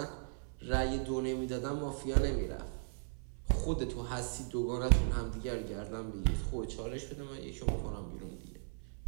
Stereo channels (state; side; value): silent; left; 53 dB below the other